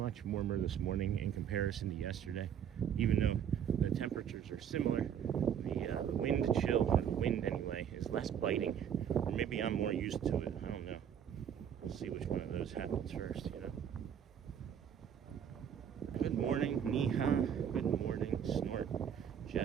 warmer this morning in comparison to yesterday. Even though the temperatures are similar, the wind chill, or the wind anyway, is less biting. Or maybe I'm more used to it, I don't know. We'll see which one of those happens first, you know. Good morning, Neha. Good morning, Snort.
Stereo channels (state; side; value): quieter; left; 8.7 dB